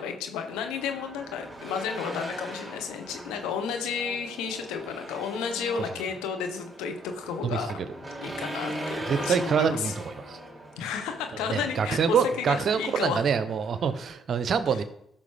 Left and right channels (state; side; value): normal; both; correlation 0.63